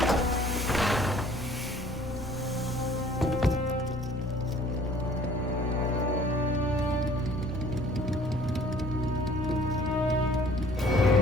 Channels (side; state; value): both; normal; correlation 0.54